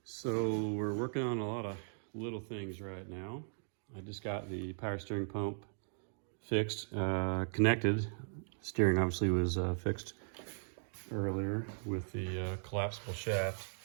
So we're working on a lot of little things right now. I just got the power steering pump fixed, connected. Steering obviously was fixed earlier with the collapsible shaft.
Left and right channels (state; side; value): silent; left; digital silence